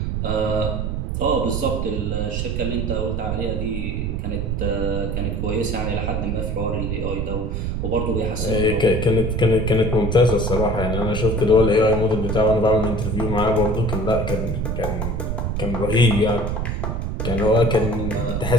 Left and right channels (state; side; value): noise; right; rumble, 1 dB below the sound